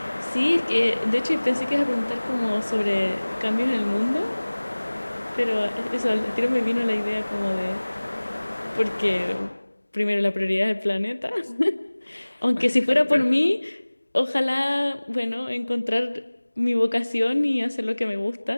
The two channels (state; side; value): inverted; both; correlation -1.00